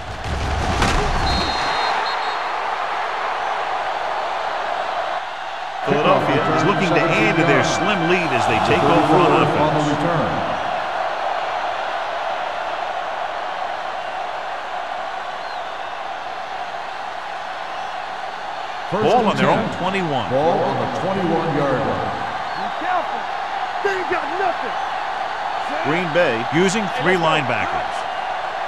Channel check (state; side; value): identical; both; correlation 1.00